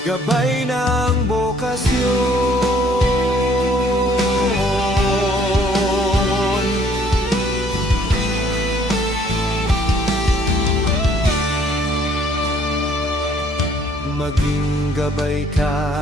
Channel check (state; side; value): normal; both; correlation 0.61